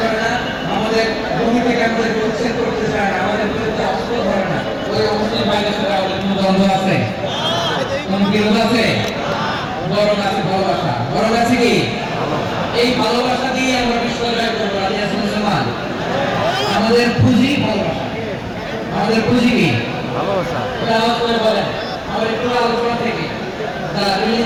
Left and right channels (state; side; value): identical; both; correlation 1.00